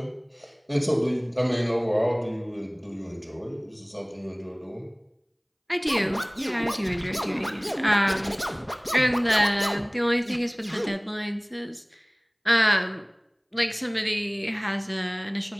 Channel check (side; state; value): both; identical; correlation 1.00